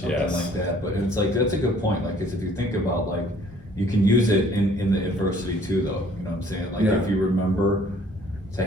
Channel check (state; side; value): normal; both; correlation 0.57